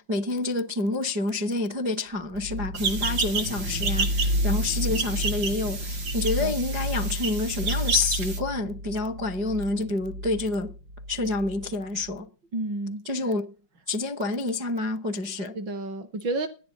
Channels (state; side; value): late; left; 5.5 ms